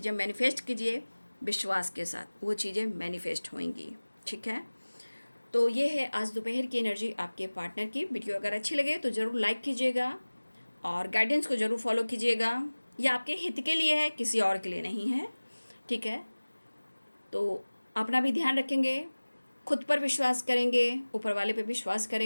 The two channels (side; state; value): both; inverted; correlation -1.00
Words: मैनिफेस्ट कीजिए विश्वास के साथ, वो चीज़ें मैनिफेस्ट होंगी, ठीक है। तो ये है आज दोपहर की एनर्जी आपके पार्टनर की। वीडियो अगर अच्छी लगे तो ज़रूर लाइक कीजिएगा और गाइडेंस को ज़रूर फॉलो कीजिएगा। ये आपके हित के लिए है, किसी और के लिए नहीं है, ठीक है। तो अपना भी ध्यान रखेंगे, खुद पर विश्वास करेंगे, ऊपर वाले पे विश्वास